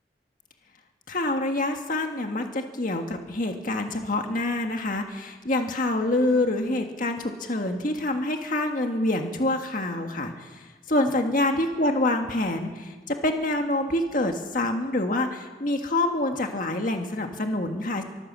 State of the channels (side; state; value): both; normal; correlation 0.40